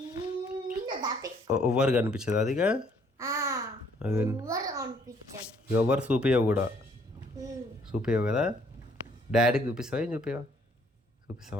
ఎవరు కనిపించదు అదిగా? ఎవరు చూపించవు కూడా, చూపించవు కదా. డాడీకి చూపిస్తావా? ఏం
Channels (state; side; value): normal; both; correlation 0.64